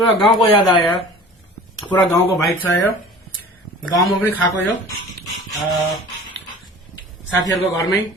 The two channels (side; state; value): both; normal; correlation 0.42